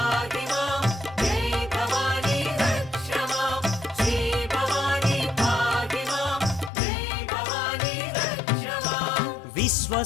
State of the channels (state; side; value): drops out; right; at 6.7 s